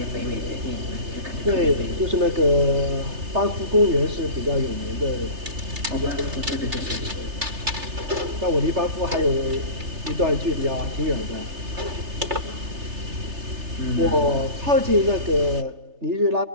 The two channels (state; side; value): late; left; 3.3 ms